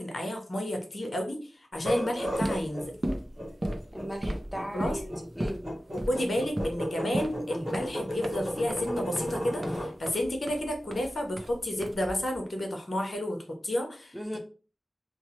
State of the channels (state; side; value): normal; both; correlation 0.93